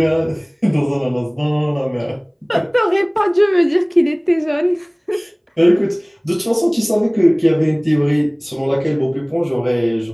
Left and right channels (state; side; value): identical; both; correlation 1.00